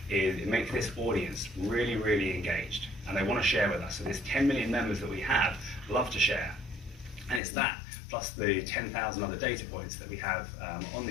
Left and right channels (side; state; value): right; drops out; at 7.4 s